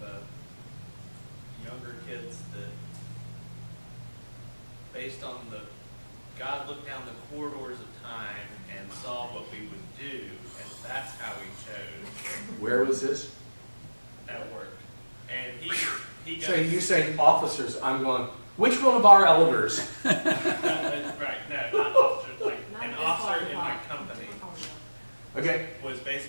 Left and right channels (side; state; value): both; inverted; correlation -1.00